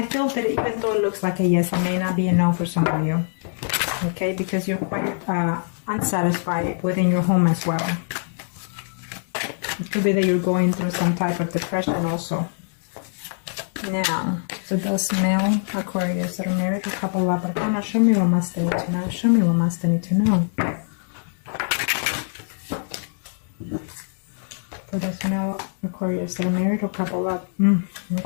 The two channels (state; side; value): silent; right; digital silence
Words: feel that even though it looks like a yes, it may not be a no for some of you. Okay, because you're quite unsatisfied within your home as well. It could be that you're going through some type of depression also. Now, for those male Aquarius that are married or couple up, show me what must they need to know. Show me what must they need to know. For those male Aquarius that are married or couple up.